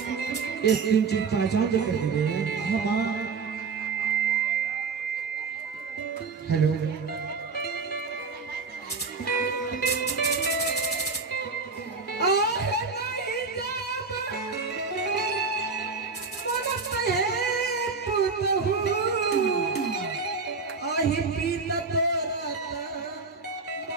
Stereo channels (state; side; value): quieter; left; 4.6 dB